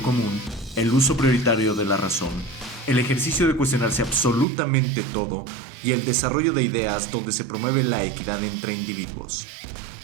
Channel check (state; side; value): drops out; left; at 4.5 s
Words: común, el uso prioritario de la razón, el ejercicio de cuestionarse absolutamente todo y el desarrollo de ideas donde se promueve la equidad entre individuos.